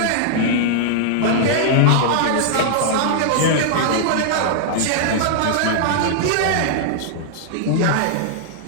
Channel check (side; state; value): both; different; correlation -0.01